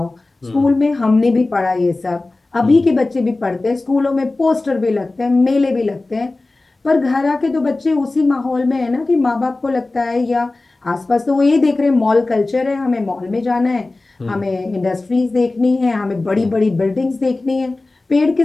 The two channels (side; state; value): right; quieter; 3.2 dB